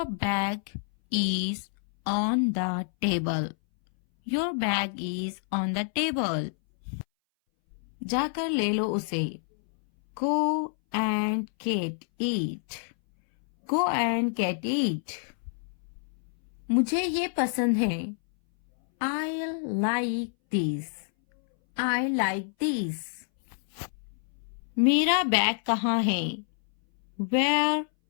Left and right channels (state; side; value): silent; right; 60 dB below the other